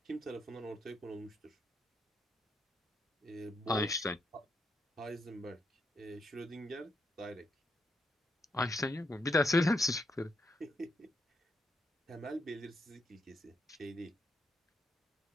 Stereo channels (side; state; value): both; normal; correlation 0.79